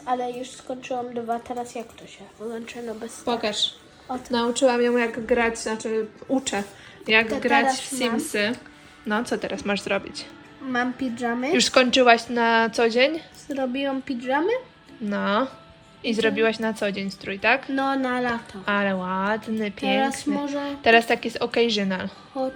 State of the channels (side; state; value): both; identical; correlation 1.00